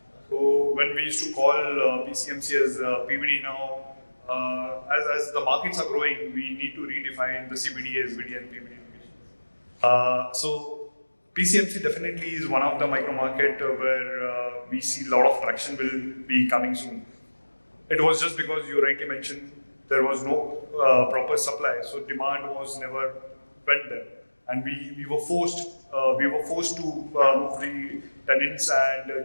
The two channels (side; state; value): both; inverted; correlation -1.00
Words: So when we used to call PCMC as PVD now, as the markets are growing, we need to redefine the CBD, SBD and PVD locations. So PCMC definitely is one of the micro market where we see a lot of traction will be coming soon. It was just because you rightly mentioned there was no proper supply, so demand was never went there, and we were forced to move the tenants